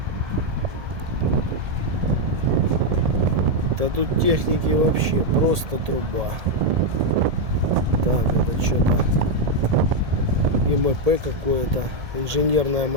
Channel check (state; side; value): late; left; 1.7 ms